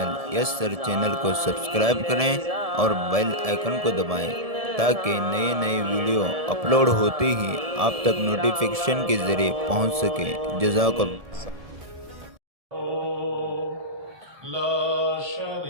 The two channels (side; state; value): left; late; 1.7 ms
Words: یس سر چینل کو سبسکرائب کریں اور بیل آئیکن کو دبائیں تاکہ نئے نئے ویڈیو اپلوڈ ہوتے ہی آپ تک نوٹیفیکیشن کے ذریعے پہنچ سکیں۔ جزاک اللہ۔ لا